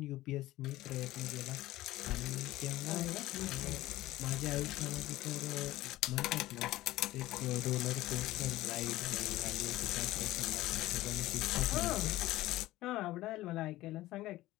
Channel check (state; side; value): quieter; right; 16.7 dB